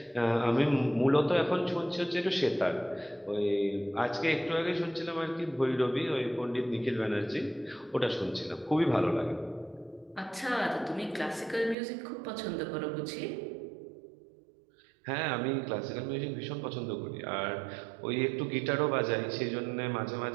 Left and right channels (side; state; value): left; drops out; at 11.8 s